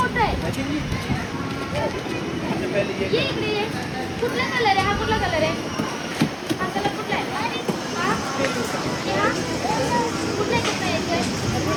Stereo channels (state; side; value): identical; both; correlation 1.00